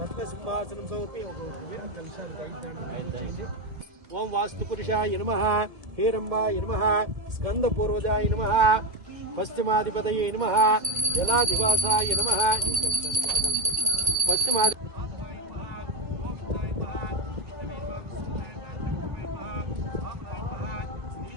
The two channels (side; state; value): left; late; 1.7 ms